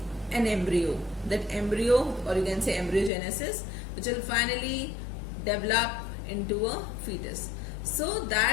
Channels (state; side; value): drops out; right; at 3.1 s